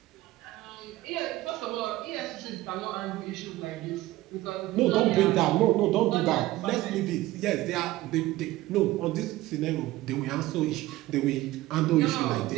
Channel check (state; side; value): quieter; left; 17.2 dB